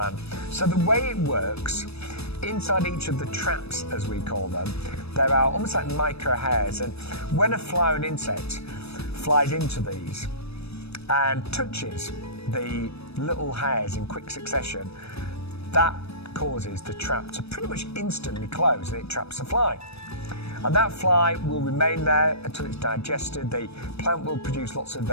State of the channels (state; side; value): late; right; 0.78 ms